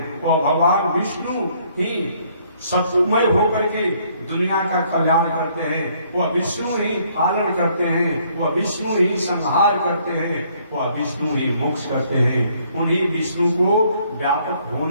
वो भगवान विष्णु ही सत्वमय होकर के दुनिया का कल्याण करते हैं। वह विष्णु ही पालन करते हैं, वह विष्णु ही संहार करते हैं, वह विष्णु ही मोक्ष करते हैं। उन्हीं विष्णु को व्यापक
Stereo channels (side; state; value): both; inverted; correlation -0.65